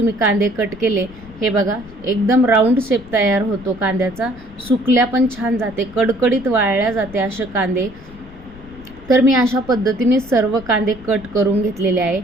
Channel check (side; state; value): left; noise; rumble, 20 dB below the sound